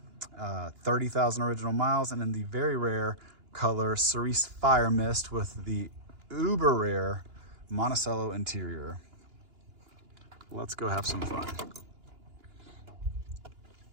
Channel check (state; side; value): late; left; 2.9 ms